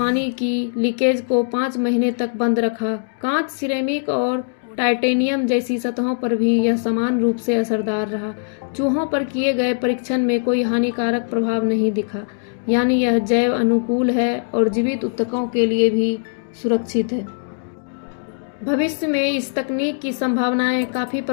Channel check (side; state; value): right; silent; digital silence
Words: की लीकेज को 5 महीने तक बंद रखा। कांच, सिरेमिक और टाइटेनियम जैसी सतहों पर भी यह समान रूप से असरदार रहा। चूहों पर किए गए परीक्षण में कोई हानिकारक प्रभाव नहीं दिखा, यानी यह जैव अनुकूल है और जीवित ऊतकों के लिए भी सुरक्षित है। भविष्य में इस तकनीक की संभावनाएं काफी